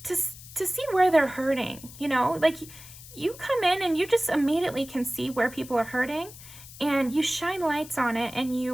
to see where they're hurting, you know? Like you come in and you just immediately can see where people are hurting, and you shine lights on it, and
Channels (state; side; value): noise; left; hiss, 17 dB below the sound